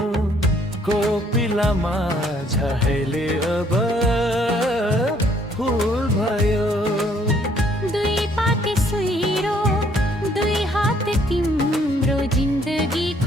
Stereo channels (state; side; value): normal; both; correlation 0.64